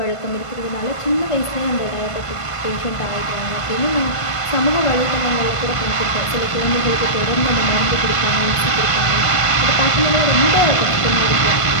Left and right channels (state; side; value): late; right; 1.5 ms